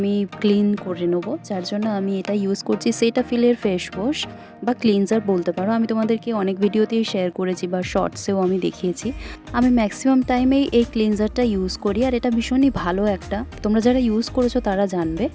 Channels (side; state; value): both; identical; correlation 1.00